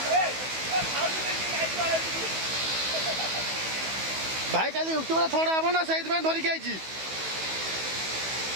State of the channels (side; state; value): left; late; 16 ms